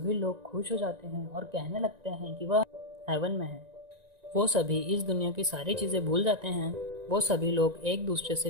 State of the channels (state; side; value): late; left; 1.9 ms